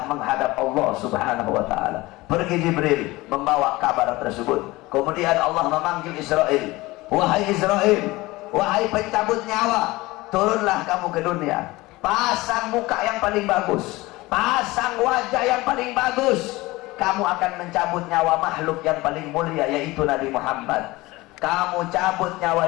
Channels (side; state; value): right; quieter; 20.4 dB